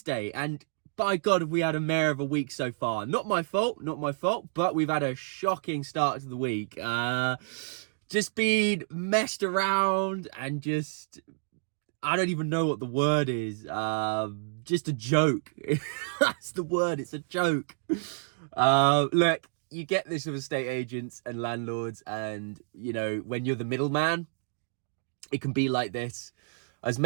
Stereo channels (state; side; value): silent; left; digital silence